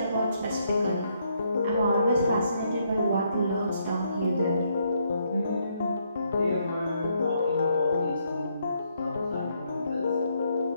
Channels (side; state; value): both; inverted; correlation -0.74